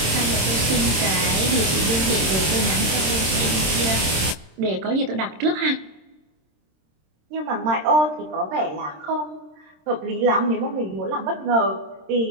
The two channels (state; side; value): late; left; 26 ms